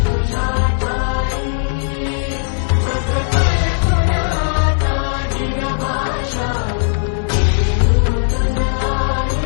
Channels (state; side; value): silent; right; digital silence